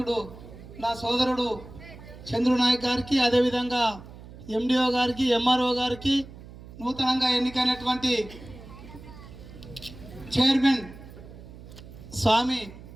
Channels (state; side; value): noise; right; hum, 17 dB below the sound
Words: నా సోదరుడు చంద్రు నాయక్ గారికి, అదేవిధంగా ఎండిఓ గారికి, ఎంఆర్ఓ గారికి, నూతనంగా ఎన్నికైనటువంటి చైర్మన్ స్వామి,